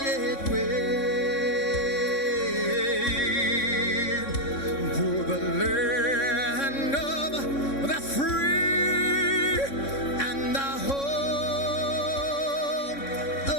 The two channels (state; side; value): late; right; 3.6 ms